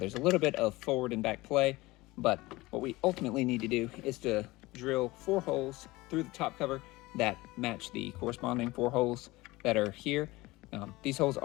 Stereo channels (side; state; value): right; quieter; 20.3 dB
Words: a little bit of forward and back play, but what we ultimately need to do is to drill 4 holes through the top cover that match the corresponding 4 holes that are here. These holes